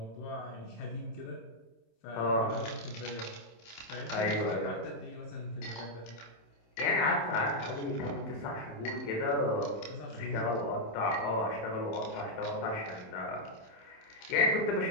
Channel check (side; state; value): right; late; 27 ms